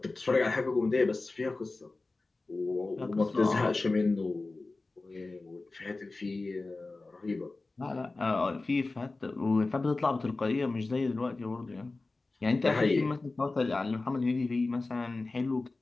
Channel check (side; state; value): right; quieter; 3.4 dB